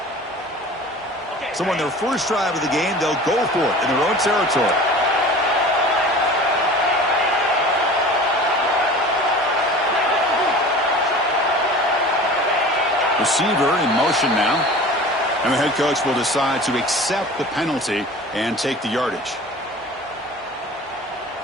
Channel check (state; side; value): normal; both; correlation 0.40